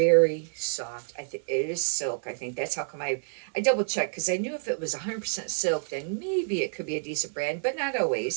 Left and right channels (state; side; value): silent; left; 59 dB below the other